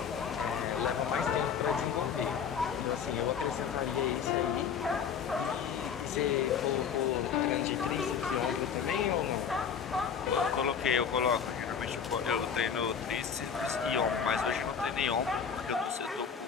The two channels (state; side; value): quieter; right; 7.1 dB